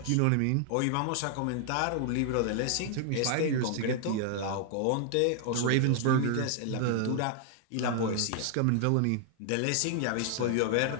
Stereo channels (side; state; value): both; different; correlation 0.00